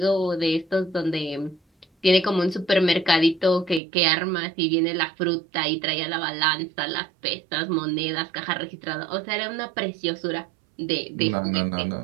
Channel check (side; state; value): left; drops out; at 3.8 s